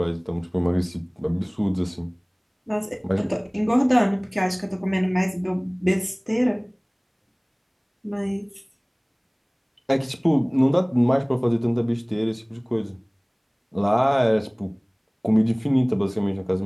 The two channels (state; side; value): identical; both; correlation 1.00